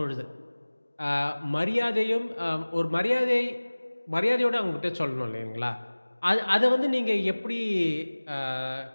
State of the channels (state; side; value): inverted; both; correlation -1.00